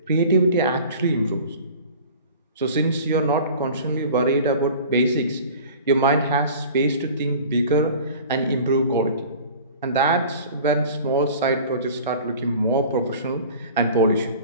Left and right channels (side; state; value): both; inverted; correlation -0.42